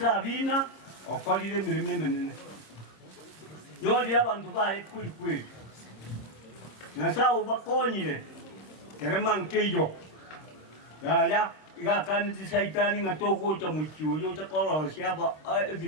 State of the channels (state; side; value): late; right; 26 ms